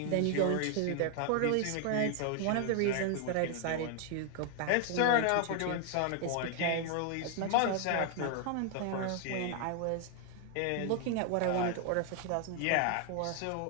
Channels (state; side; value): different; both; correlation 0.00